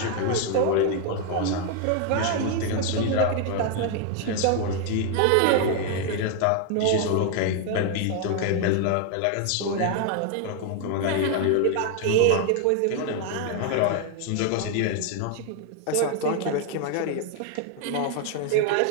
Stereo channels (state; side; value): different; both; correlation 0.00